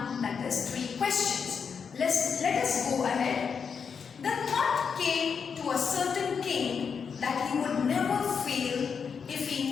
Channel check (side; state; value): right; quieter; 6.3 dB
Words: that is 3 questions. Let us go ahead. The thought came to a certain king that he would never fail if he